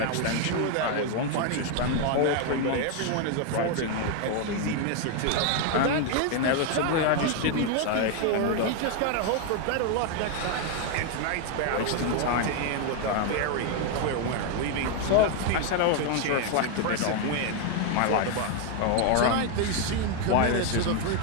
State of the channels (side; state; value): both; different; correlation 0.01